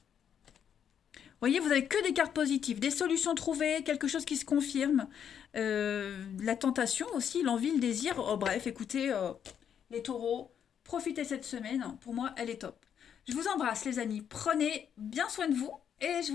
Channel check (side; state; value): right; quieter; 8.5 dB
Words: Vous voyez, vous avez que des cartes positives, des solutions trouvées, quelque chose qui se confirme. La tentation aussi, l'envie, le désir. Oh, bref, écoutez, les taureaux, profitez cette semaine. Pour moi, elle est top. Je vous embrasse, les amis. Prenez bien soin de vous et je